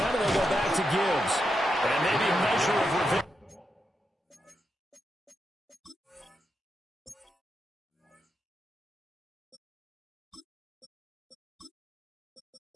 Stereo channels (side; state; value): both; normal; correlation 0.85